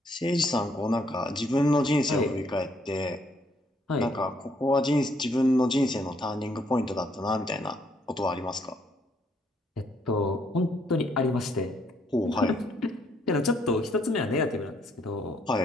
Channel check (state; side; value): normal; both; correlation 0.69